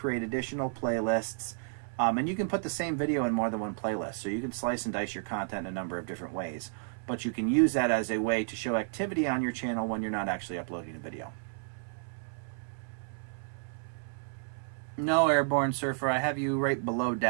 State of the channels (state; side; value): silent; left; 57 dB below the other